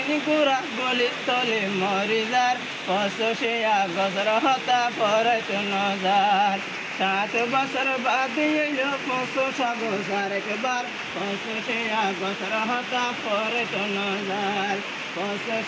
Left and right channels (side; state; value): both; identical; correlation 1.00